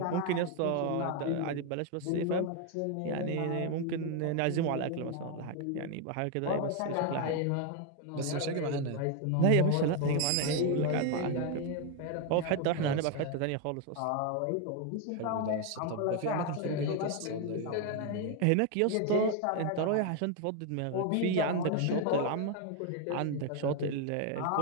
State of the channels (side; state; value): both; different; correlation 0.01